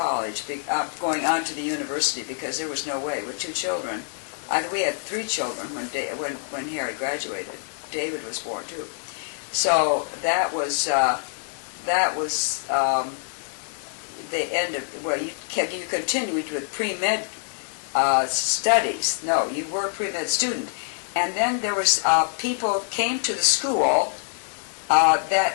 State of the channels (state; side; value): silent; right; 61 dB below the other